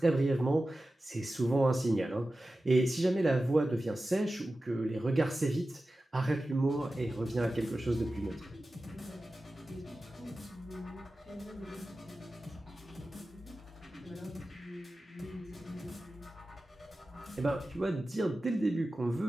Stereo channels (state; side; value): normal; both; correlation 0.94